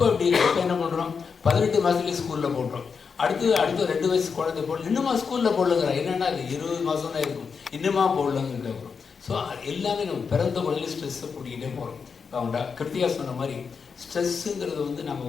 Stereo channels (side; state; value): right; quieter; 5.8 dB